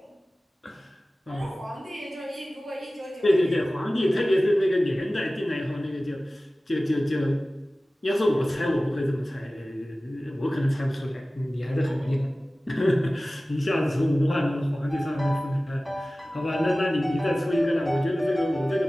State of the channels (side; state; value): both; normal; correlation 0.97